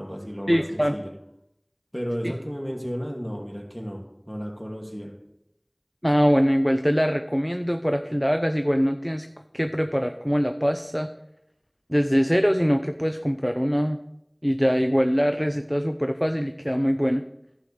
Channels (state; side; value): identical; both; correlation 1.00